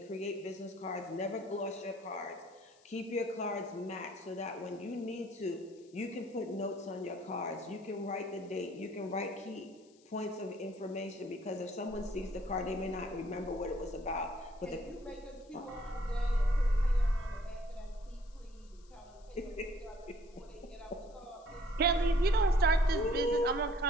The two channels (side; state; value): left; noise; hiss, 29 dB below the sound